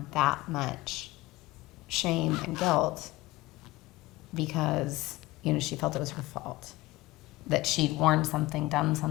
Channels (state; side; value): quieter; right; 18.8 dB